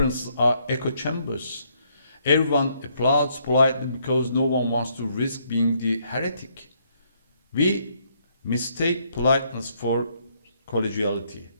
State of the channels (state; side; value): inverted; both; correlation -0.71